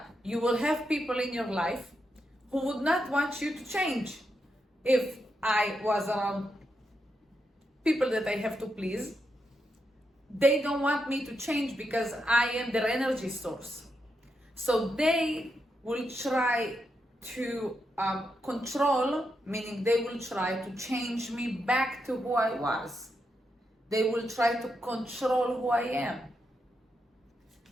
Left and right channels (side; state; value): both; normal; correlation 0.84